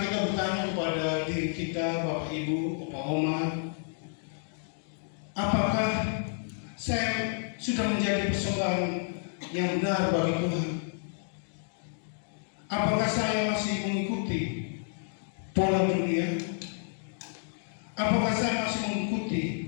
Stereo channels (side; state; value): right; silent; digital silence